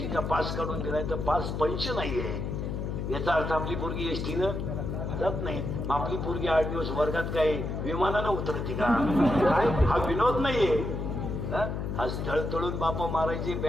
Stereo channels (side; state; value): left; noise; hum, 3 dB below the sound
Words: पास काढून दिलाय तर पास पंच नाहीये. याचा अर्थ आपली पोरगी एसटीनं जात नाही. आपली पोरगी 8 दिवस वर्गात काय विमानानं उतरते का? हा विनोद नाहीये. आज तळतळून बापा मारायची,